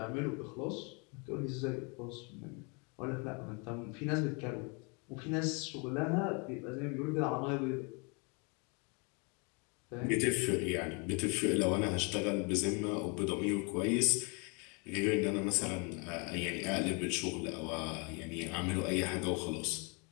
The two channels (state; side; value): quieter; right; 32.8 dB